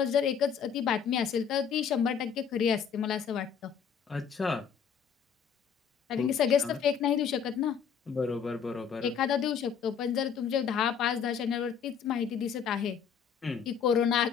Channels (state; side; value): quieter; right; 7.3 dB